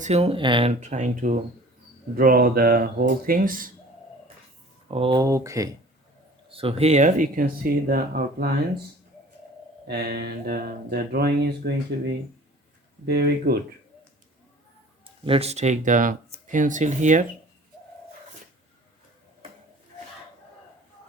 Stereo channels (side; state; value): both; normal; correlation 0.46